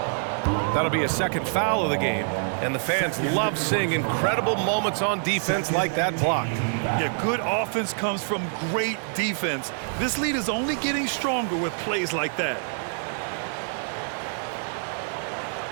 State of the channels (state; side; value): silent; left; 61 dB below the other